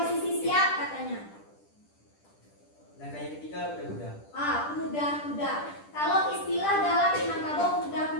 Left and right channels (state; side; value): late; right; 10 ms